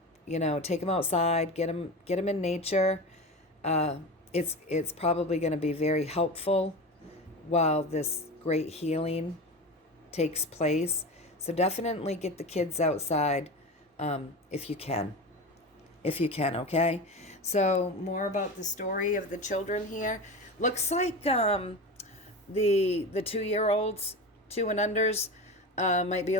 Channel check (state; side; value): normal; both; correlation 0.27